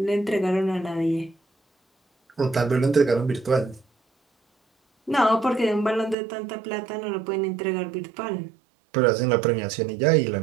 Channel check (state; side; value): drops out; left; at 6.2 s